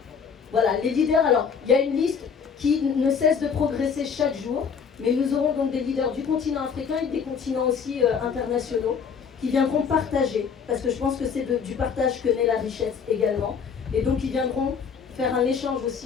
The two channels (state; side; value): quieter; right; 6.4 dB